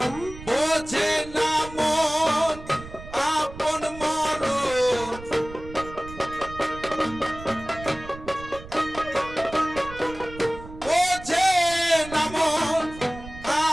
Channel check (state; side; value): noise; right; rumble, 15 dB below the sound